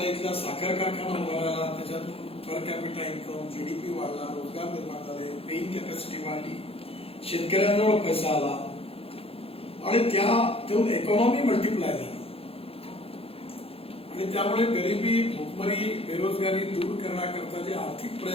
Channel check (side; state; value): right; late; 0.28 ms